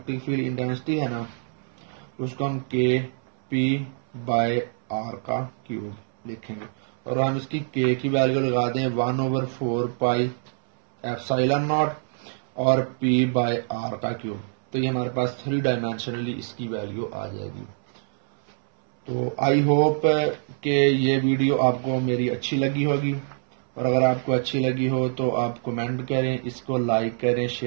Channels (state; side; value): silent; left; 61 dB below the other